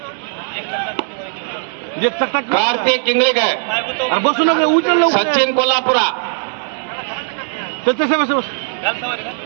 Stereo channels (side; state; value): left; silent; digital silence